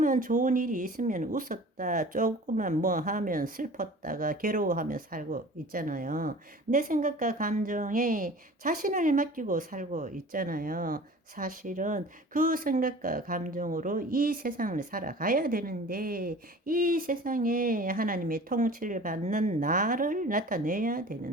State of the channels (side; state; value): both; normal; correlation 0.43